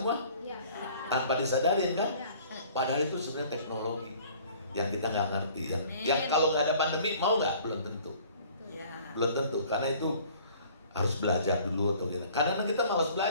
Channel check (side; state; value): both; inverted; correlation -0.52